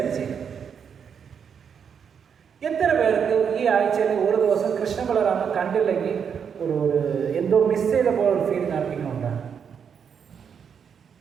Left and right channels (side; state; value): left; quieter; 7.2 dB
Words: ചെയ്യുന്ന. എത്ര പേർക്ക് ഈ ആഴ്ചയിൽ ഒരു ദിവസം കൃഷ്ണ ബലറാമ കണ്ടില്ലെങ്കിൽ ഒരു എന്തോ മിസ് ചെയ്ത പോലെ ഒരു ഫീലിംഗ് ആർക്കെങ്കിലുണ്ടാണ്?